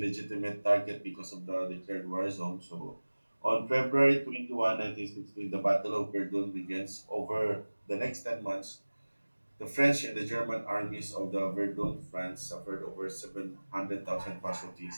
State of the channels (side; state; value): both; inverted; correlation -1.00